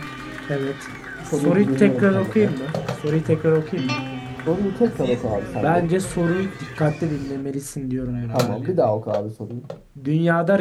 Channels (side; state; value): both; identical; correlation 1.00